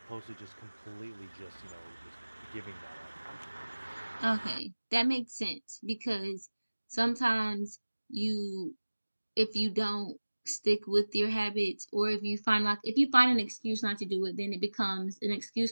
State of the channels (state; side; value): inverted; both; correlation -1.00